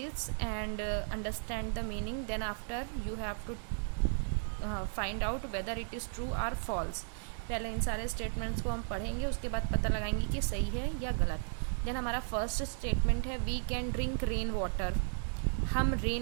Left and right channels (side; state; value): left; silent; digital silence